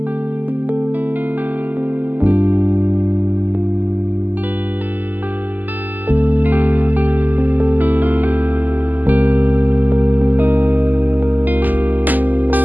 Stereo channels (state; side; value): late; left; 0.085 ms